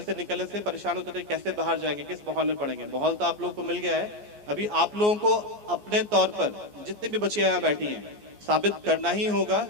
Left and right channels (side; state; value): left; late; 14 ms